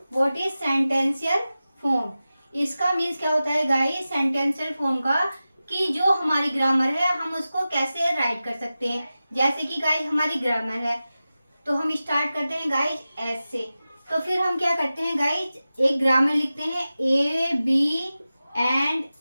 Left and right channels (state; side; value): inverted; both; correlation -0.95